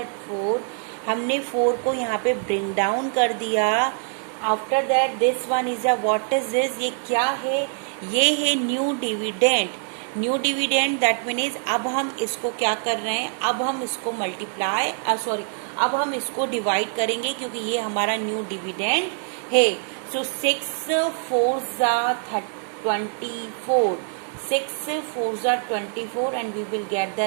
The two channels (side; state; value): left; silent; 58 dB below the other